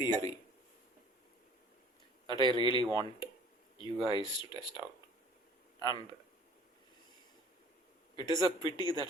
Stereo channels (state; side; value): normal; both; correlation 0.51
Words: that I really want you guys to test out. And it is a pity that